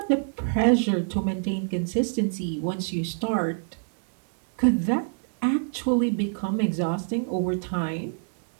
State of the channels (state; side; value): silent; left; digital silence